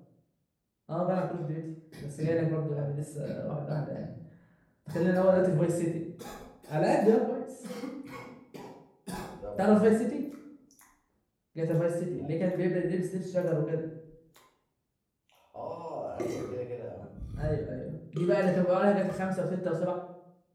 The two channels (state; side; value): identical; both; correlation 1.00